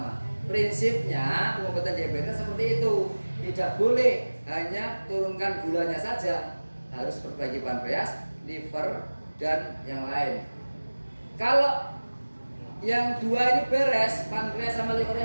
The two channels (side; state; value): both; inverted; correlation -1.00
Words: Prinsipnya pengobatan diabetes seperti itu. Tidak boleh hanya turunkan gulanya saja, harus perbaiki pankreas, liver, dan yang lain. Kalau yang dua ini beres, pankreas sama